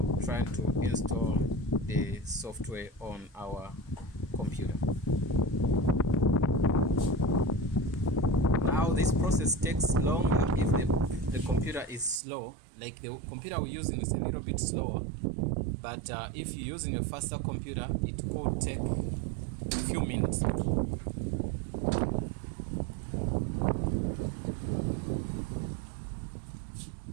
trying to install the software on our computer. Now this process takes longer if the computer is slow. Like the computer we're using is a little bit slower, but if you're using a faster computer, it could take a few minutes.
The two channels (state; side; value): drops out; left; at 12.2 s